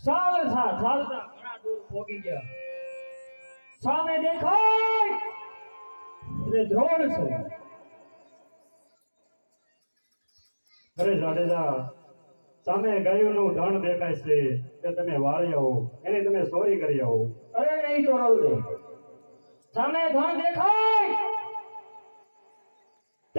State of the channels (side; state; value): both; inverted; correlation -1.00